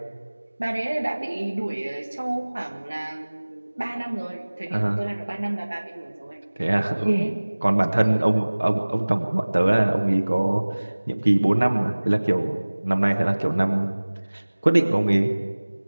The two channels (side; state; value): both; inverted; correlation -1.00